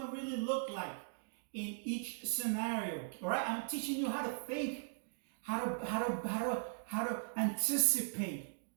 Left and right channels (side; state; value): left; silent; digital silence